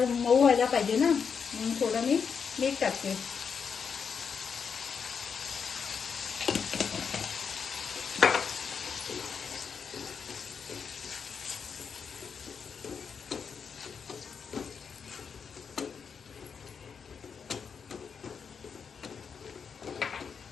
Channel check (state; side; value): quieter; right; 6.3 dB